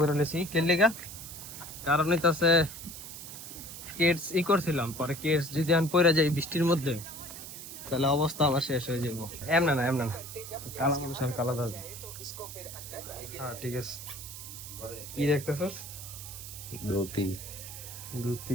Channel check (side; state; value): right; noise; hiss, 11 dB below the sound